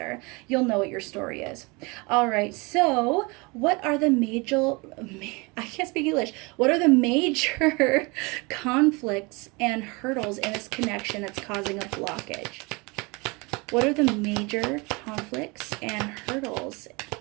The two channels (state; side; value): quieter; left; 27.4 dB